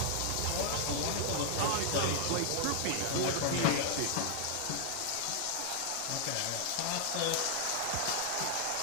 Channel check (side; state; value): both; different; correlation 0.00